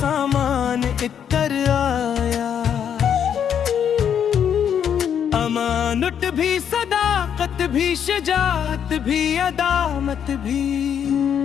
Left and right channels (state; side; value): quieter; right; 8.5 dB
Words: इतर आया। अमानत भी सदाकत भी शजात भी अदामत भी